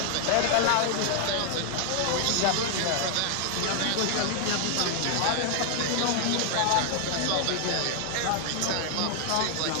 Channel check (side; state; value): both; different; correlation 0.00